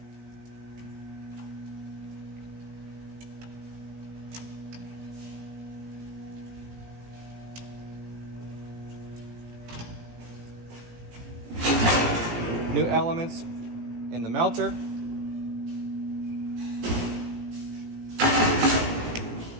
New elements in the melter.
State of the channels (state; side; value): late; left; 17 ms